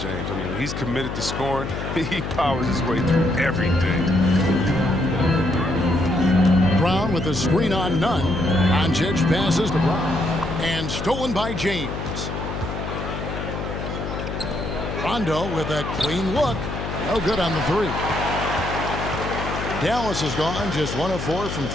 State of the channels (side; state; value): left; noise; hum, 5 dB below the sound